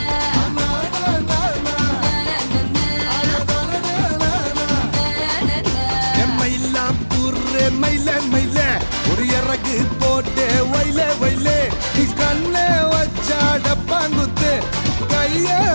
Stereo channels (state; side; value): inverted; both; correlation -1.00